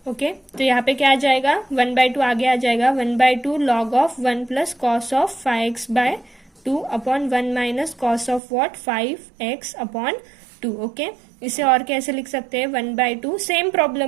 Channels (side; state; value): left; drops out; at 8.4 s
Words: ओके, तो यहाँ पे क्या आ जाएगा 1/2 आगे आ जाएगा 1/2 log of 1 plus cos of 5x/2 upon 1 minus cos of what 5x upon 2। Okay, इसे और कैसे लिख सकते हैं 1/2, सेम